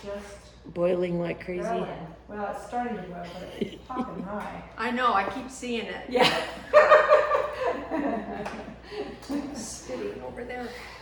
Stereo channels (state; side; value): identical; both; correlation 1.00